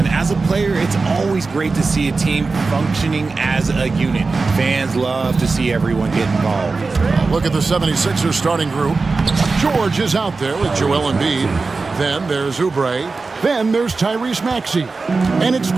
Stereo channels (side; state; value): left; quieter; 4.0 dB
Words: As a player, it's always great to see a team functioning as a unit. Fans love to see everyone get involved. Look at the 76ers starting group. George is out there with Joel Embiid. Then there's Oubre. Then there's Tyrese Maxey. And it's